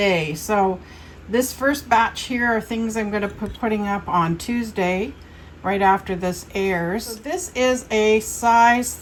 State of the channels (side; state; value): both; identical; correlation 1.00